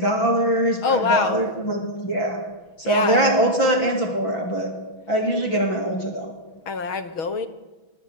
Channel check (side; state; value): right; late; 6.3 ms